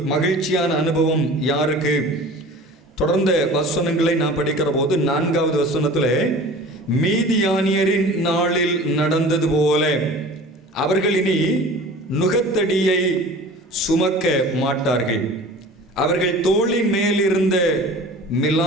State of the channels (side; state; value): both; normal; correlation 0.41